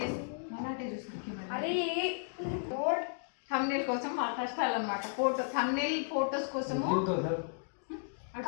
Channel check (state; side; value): silent; right; digital silence